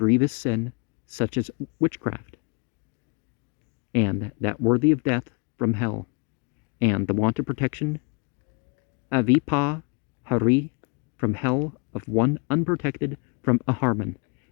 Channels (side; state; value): right; quieter; 33.3 dB